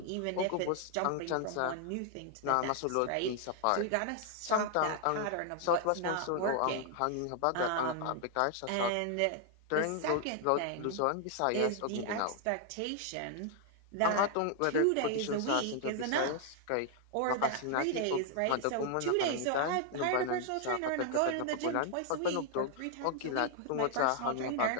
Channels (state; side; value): different; both; correlation 0.00